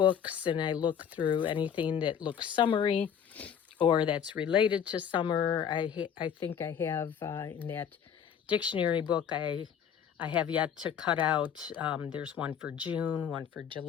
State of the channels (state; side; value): quieter; right; 8.3 dB